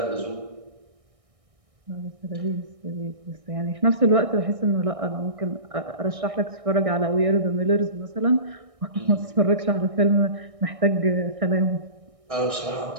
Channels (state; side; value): late; left; 1.6 ms